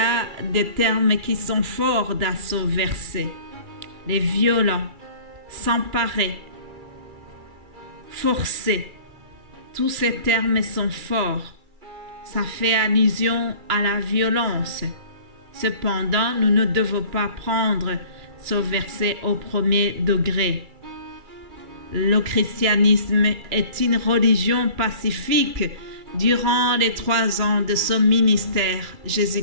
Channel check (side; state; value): left; late; 2.3 ms